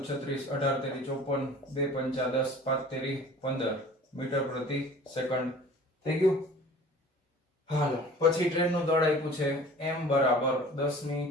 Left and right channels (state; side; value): normal; both; correlation 0.45